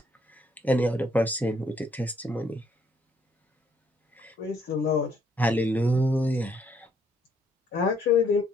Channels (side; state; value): both; normal; correlation 0.68